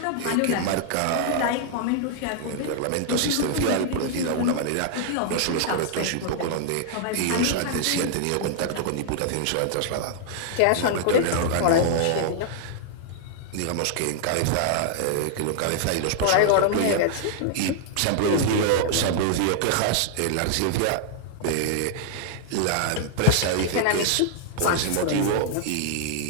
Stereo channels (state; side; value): different; both; correlation -0.01